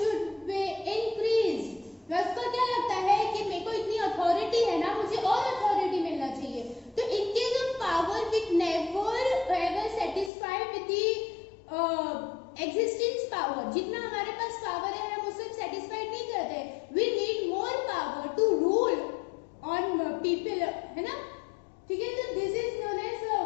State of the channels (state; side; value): drops out; right; at 10.3 s